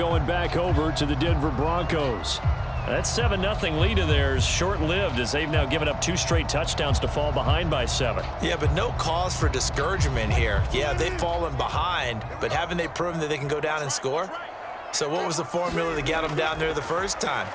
back over to the Denver Broncos. That 7-0 lead of theirs short-lived as they've now given up 2 straight touchdowns to fall behind by 7. Yeah, but no cause for discouragement here. Yeah, they've fallen behind, but haven't they proven that they can go down and score? So what was the formula to get them down there the first time?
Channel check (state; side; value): identical; both; correlation 1.00